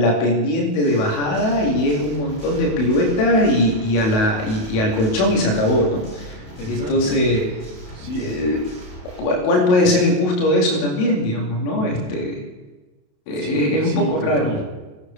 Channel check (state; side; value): late; right; 27 ms